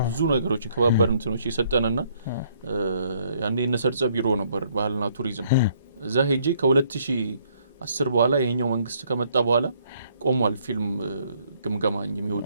ብዙ ነገሮችን ከባባድ እንትኖች የሰጠንና ያኔ እነሰርጸ ቢሮ ነበር ባህልና ቱሪዝም። እዛ ሄጄ ከ2010 በኋላ ይሄኛው መንግስት ከመጣ በኋላ ቆሟል ፊልም ግምገማ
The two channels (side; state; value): both; inverted; correlation -0.67